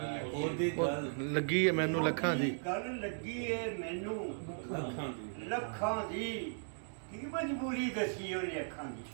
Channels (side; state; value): left; silent; digital silence